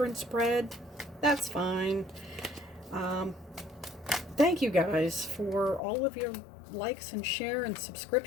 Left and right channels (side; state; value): right; drops out; at 5.8 s